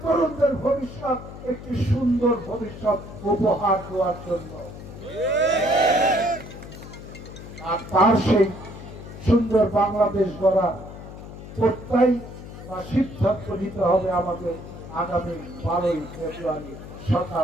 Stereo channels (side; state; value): left; noise; hum, 13 dB below the sound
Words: তরুণদের ভবিষ্যৎ, একটি সুন্দর ভবিষ্যৎ উপহার দেওয়ার জন্য। আর তার সেই সুন্দর বাংলাদেশ গড়া প্রত্যয় বা সিদ্ধান্ত নিতে হবে আমাদের আগামী 12ই ফেব্রুয়ারি